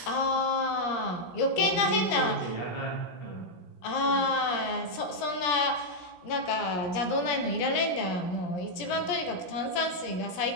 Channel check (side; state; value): right; late; 17 ms